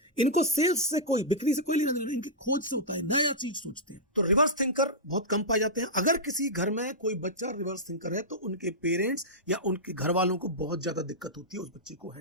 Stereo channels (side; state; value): both; normal; correlation -0.11